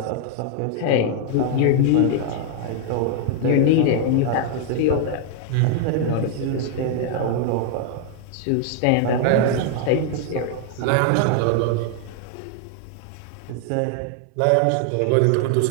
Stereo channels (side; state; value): both; different; correlation 0.00